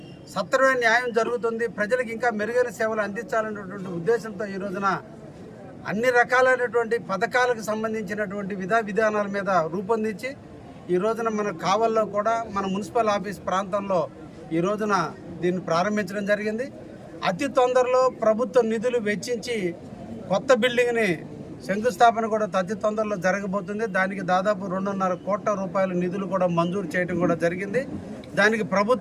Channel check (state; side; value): identical; both; correlation 1.00